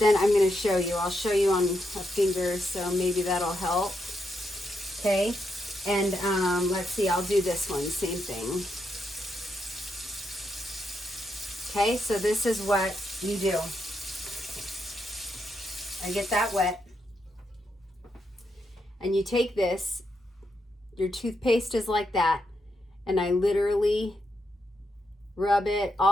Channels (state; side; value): normal; both; correlation 0.81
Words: I'm going to show you. I'll show you on a finger, so maybe that'll help. Okay. And let's see. I'll do this one. Same thing. Okay. So this is what you do. I get that wet. And you take this. Your toothpaste is like that. And I literally rub it